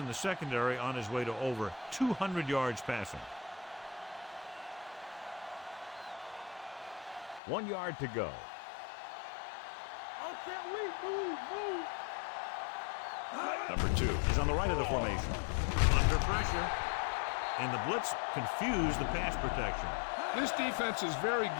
the secondary on his way to over 200 yards passing. 1 yard to go. Number 2 is on the right of the formation. Under pressure. And the blitz confused the pass protection. This defense is very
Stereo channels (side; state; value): right; drops out; at 7.4 s